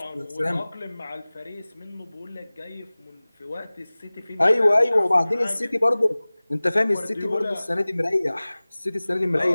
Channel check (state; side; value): inverted; both; correlation -0.99